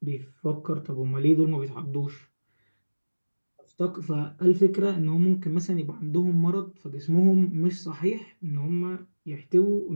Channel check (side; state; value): both; inverted; correlation -1.00